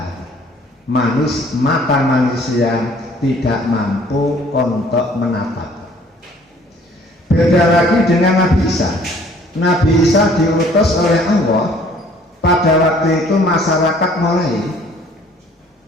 Mata manusia tidak mampu untuk menatap. Beda lagi dengan Nabi Isa. Nabi Isa diutus oleh Allah. Pada waktu itu masyarakat mulai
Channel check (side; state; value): both; normal; correlation 0.57